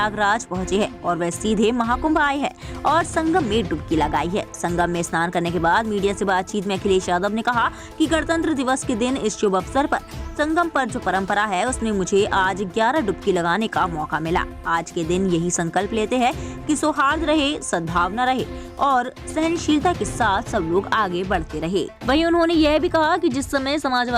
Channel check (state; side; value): identical; both; correlation 1.00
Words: पहुंचे हैं और वह सीधे महाकुंभ आए हैं और संगम में डुबकी लगाई है। संगम में स्नान करने के बाद मीडिया से बातचीत में अखिलेश यादव ने कहा कि गणतंत्र दिवस के दिन इस शुभ अवसर पर संगम पर जो परंपरा है उसमें मुझे आज 11 डुबकी लगाने का मौका मिला। आज के दिन यही संकल्प लेते हैं कि सौहार्द रहे, सद्भावना रहे और सहनशीलता के साथ सब लोग आगे बढ़ते रहे। वहीं उन्होंने यह भी कहा कि जिस समय